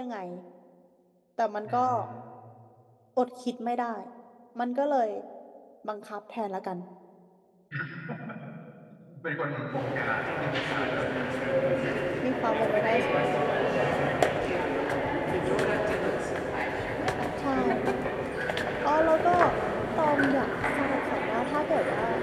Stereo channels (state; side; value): identical; both; correlation 1.00